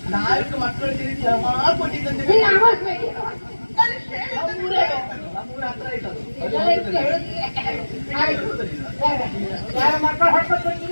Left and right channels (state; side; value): inverted; both; correlation -1.00